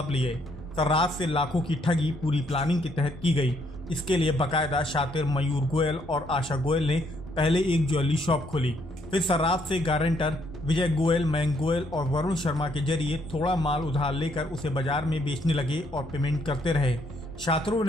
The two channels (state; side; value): noise; left; hum, 23 dB below the sound